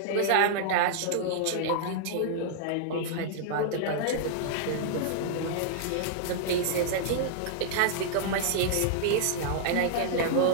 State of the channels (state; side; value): different; both; correlation -0.01